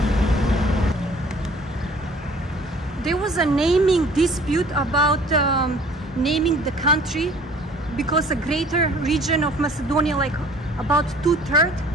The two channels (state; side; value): normal; both; correlation 0.52